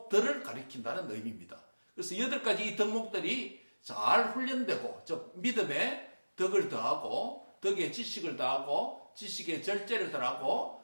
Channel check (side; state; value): both; inverted; correlation -1.00